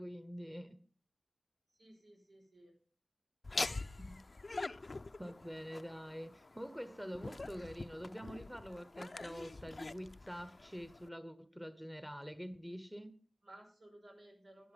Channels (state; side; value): normal; both; correlation 0.98